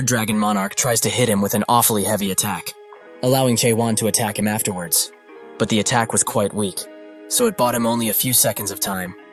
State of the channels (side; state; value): both; identical; correlation 1.00